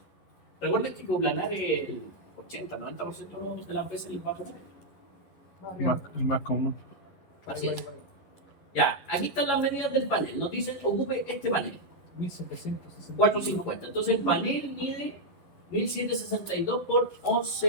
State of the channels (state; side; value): late; right; 11 ms